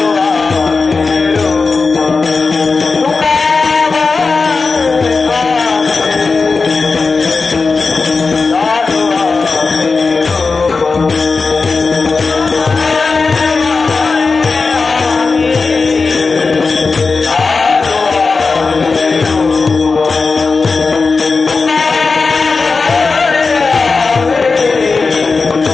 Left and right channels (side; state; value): right; quieter; 4.3 dB